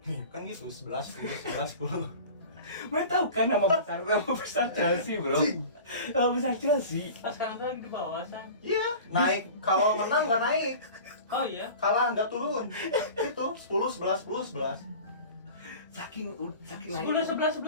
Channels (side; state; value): both; inverted; correlation -0.38